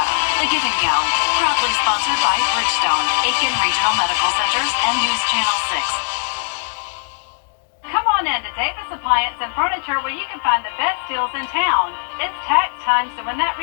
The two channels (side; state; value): right; silent; digital silence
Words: The Giving Gown, proudly sponsored by Bridgestone, Aiken Regional Medical Centers, and News Channel 6. Come on in to Davis Appliance and Furniture, where you can find the best deals in town. It's tax time, so when that